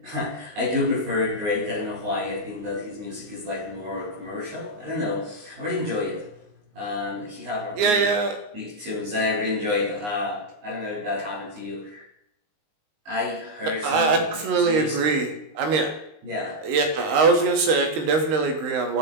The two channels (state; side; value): late; left; 19 ms